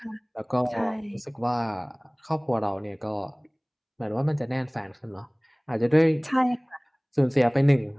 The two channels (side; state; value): both; identical; correlation 1.00